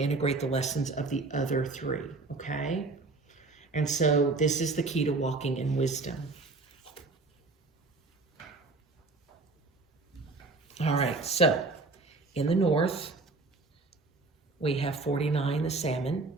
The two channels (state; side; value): quieter; left; 3.5 dB